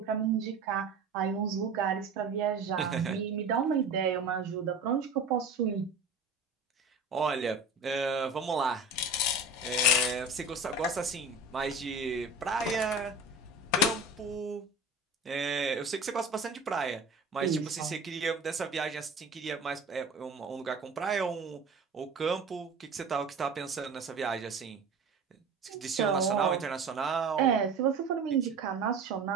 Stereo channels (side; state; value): left; quieter; 3.3 dB